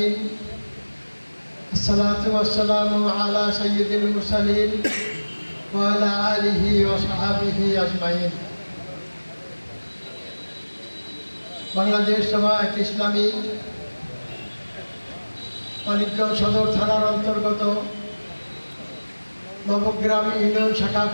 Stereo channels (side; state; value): both; inverted; correlation -1.00